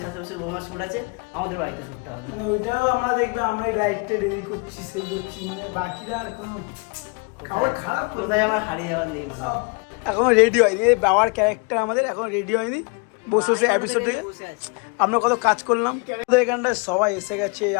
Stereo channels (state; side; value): quieter; right; 32.4 dB